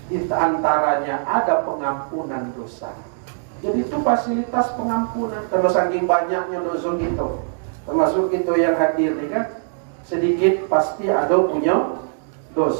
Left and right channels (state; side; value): silent; left; digital silence